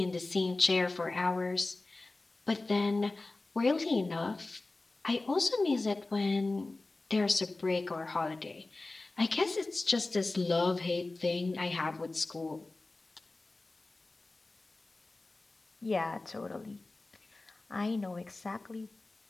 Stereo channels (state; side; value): quieter; right; 3.2 dB